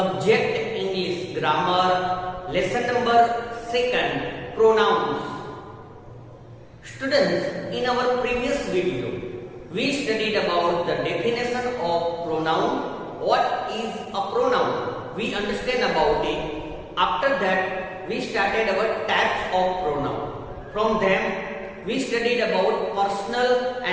English grammar lesson number 2 pronouns. Students, in our previous video we studied about the definition of pronoun. What is a pronoun? We understand about it. After that we started our types of pronoun. From them we studied about personal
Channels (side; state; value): both; identical; correlation 1.00